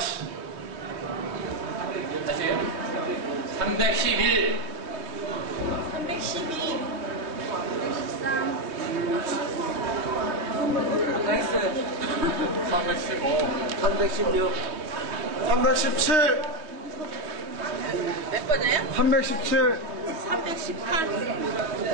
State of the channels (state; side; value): late; left; 3.2 ms